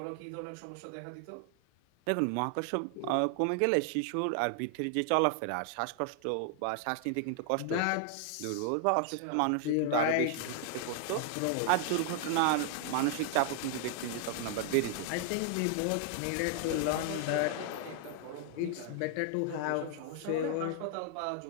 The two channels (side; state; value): both; different; correlation 0.00